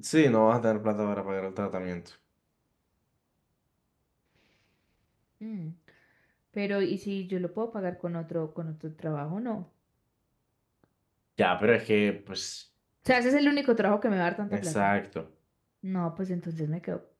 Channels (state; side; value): identical; both; correlation 1.00